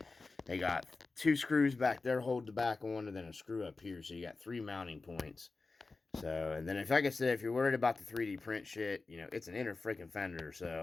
They got 2 screws back there hold the back on, and then a screw up here. So you got 3 mounting points. So, and then like I said, if you're worried about the 3D print shit, it's an inner freaking fender.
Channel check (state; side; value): quieter; right; 3.8 dB